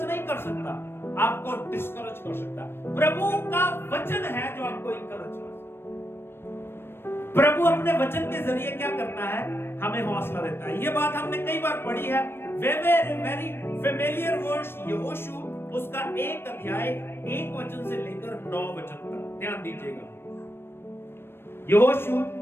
नहीं कर सकता, आपको डिस्करेज कर सकता। प्रभु का वचन है जो आपको इनकरेज कर सकता। प्रभु अपने वचन के जरिए क्या करता है, हमें हौसला देता है। ये बात हमने कई बार पढ़ी है, वेरी फेमिलियर वर्स, यहोशू उसका 1 अध्याय 1 वचन से लेकर 9 वचन तक, ध्यान दीजिएगा। यहोशू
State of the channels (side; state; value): right; late; 0.11 ms